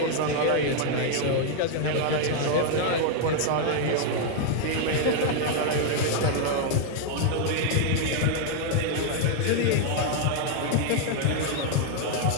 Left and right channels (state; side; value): different; both; correlation 0.00